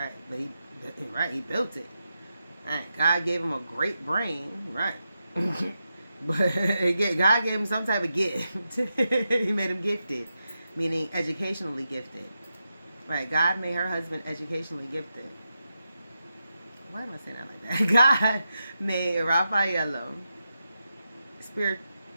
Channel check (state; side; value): inverted; both; correlation -0.88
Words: But he built it. Right. God gave him a great brain, right? But God gave him some type of gift. He made him gifted, meaning educationally gifted. Right? God made her husband educationally gifted. Why am I saying that like that? God made Raffaello